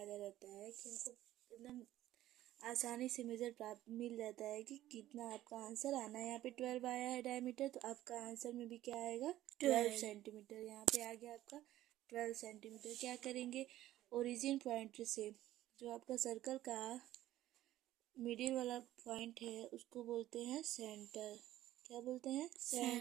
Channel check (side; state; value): left; quieter; 14.2 dB